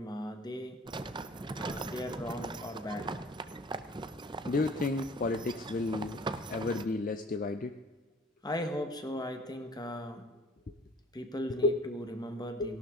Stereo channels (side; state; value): both; normal; correlation 0.49